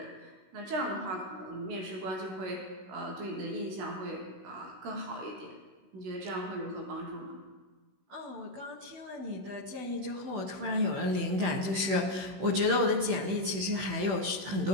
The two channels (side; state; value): left; late; 16 ms